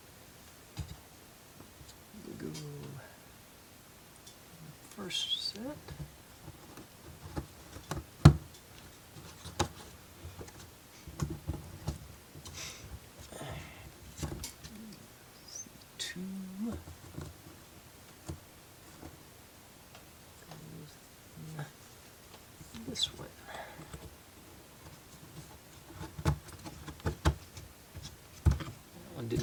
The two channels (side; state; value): both; identical; correlation 1.00